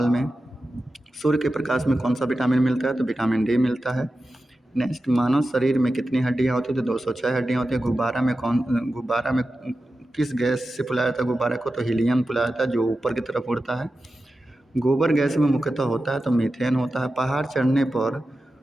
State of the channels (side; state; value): both; normal; correlation 0.92